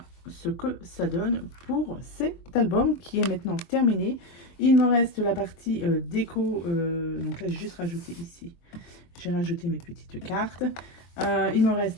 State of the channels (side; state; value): right; late; 23 ms